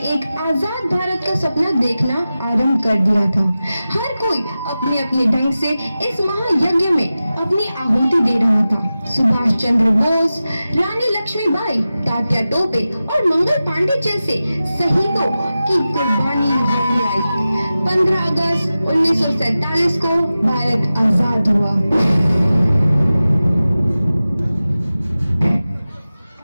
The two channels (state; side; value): inverted; both; correlation -0.94